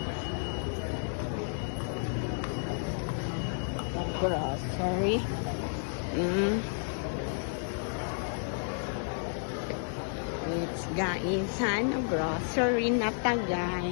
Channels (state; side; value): silent; right; digital silence